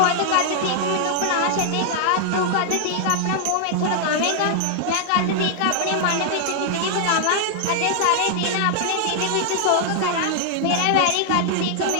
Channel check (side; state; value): both; different; correlation 0.00